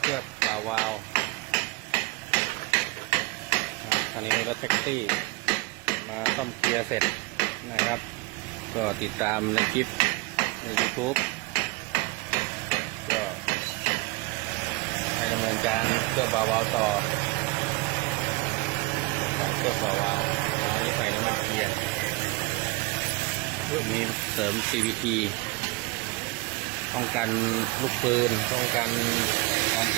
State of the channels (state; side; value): quieter; left; 23.1 dB